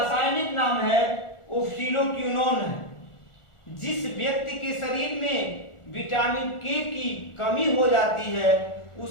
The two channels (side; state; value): right; late; 1.4 ms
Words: नाम है वो फिनोक्विनोन है। जिस व्यक्ति के शरीर में विटामिन के की कमी हो जाती है,